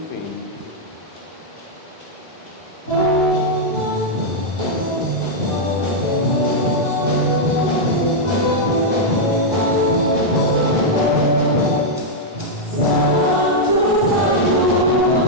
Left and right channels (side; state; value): both; normal; correlation -0.04